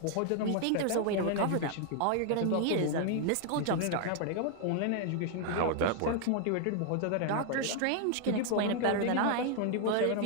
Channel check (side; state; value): both; different; correlation 0.00